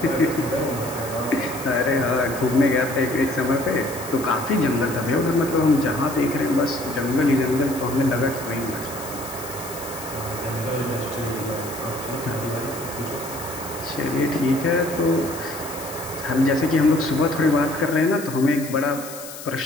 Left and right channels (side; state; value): left; noise; hiss, 13 dB below the sound